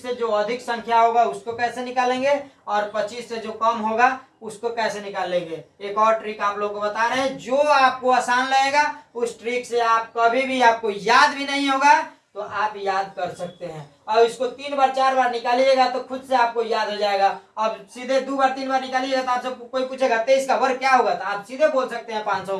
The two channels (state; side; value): identical; both; correlation 1.00